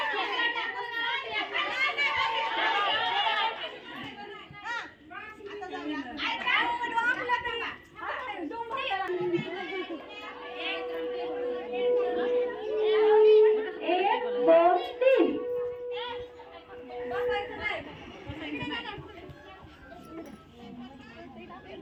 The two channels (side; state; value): both; identical; correlation 1.00